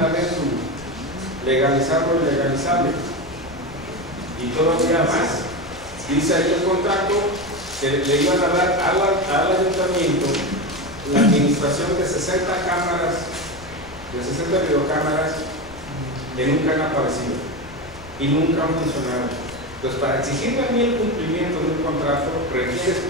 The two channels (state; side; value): noise; left; rumble, 19 dB below the sound